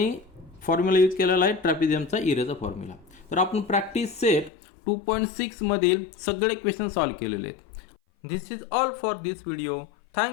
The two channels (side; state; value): right; drops out; at 4.5 s